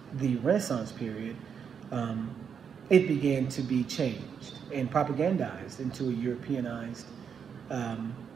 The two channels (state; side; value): quieter; left; 7.1 dB